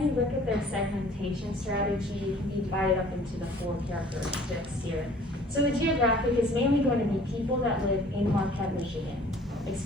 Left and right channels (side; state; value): both; normal; correlation 0.52